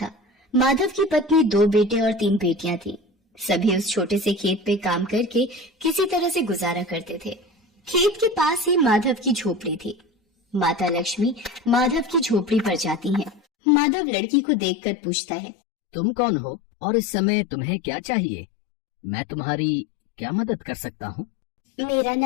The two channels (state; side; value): drops out; right; at 13.4 s